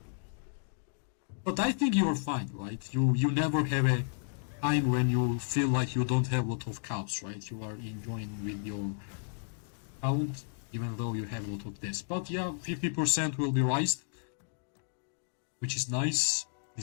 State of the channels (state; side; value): silent; right; digital silence